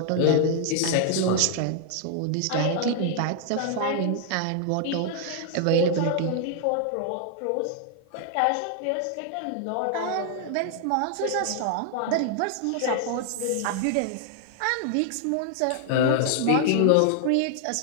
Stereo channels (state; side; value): different; both; correlation 0.00